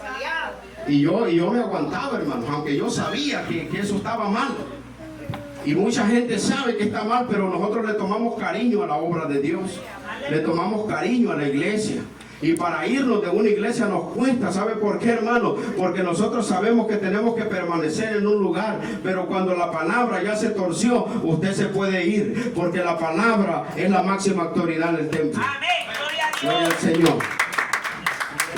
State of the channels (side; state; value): both; identical; correlation 1.00